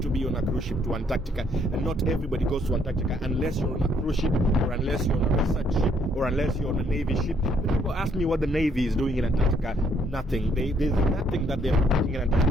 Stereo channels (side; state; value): both; normal; correlation 0.68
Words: to be on a cruise ship to Antarctica, and not everybody goes to Antarctica unless you're on a cruise ship, or unless you're on a research ship, or unless you're on a Navy ship. But people ask me what the Navy is doing in Antarctica. Nothing. There's nothing that they're doing in